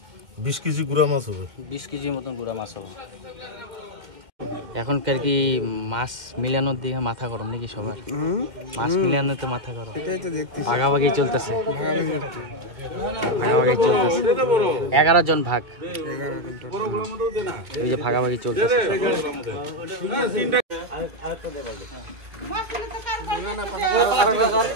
20 কেজি গুড়া মাছ হবে। 20 কেজির মতন গুড়া মাছ হবে। এখনকার কি মাছ মিলানোর দিকে মাথা গরম নাকি সবার? মাছ মিলানোতে মাথা গরম, ভাগাভাগি চলতেছে। 11 জন ভাগ, এই যে ভাগাভাগি চলতেছে।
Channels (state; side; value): late; left; 2.1 ms